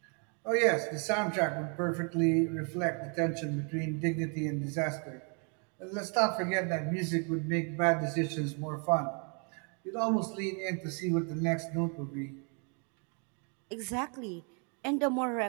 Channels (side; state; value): left; quieter; 37.9 dB